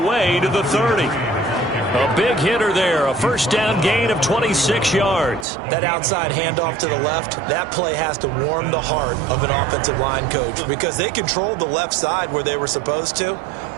to the 30. A big hitter there. A first down gain of 26 yards. That outside handoff to the left, that play has to warm the heart of an offensive line coach because they controlled the left side where they were supposed to,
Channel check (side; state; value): left; drops out; at 5.5 s